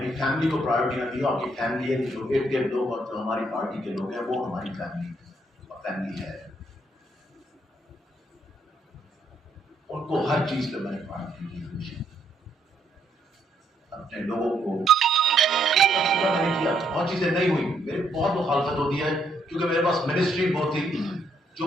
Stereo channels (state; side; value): normal; both; correlation 0.72